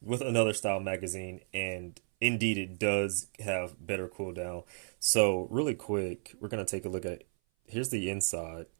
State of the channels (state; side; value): silent; left; 56 dB below the other